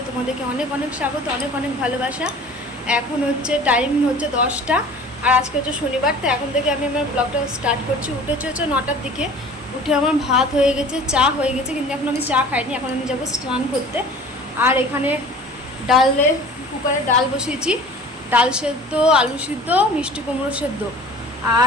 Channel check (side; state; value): both; normal; correlation 0.44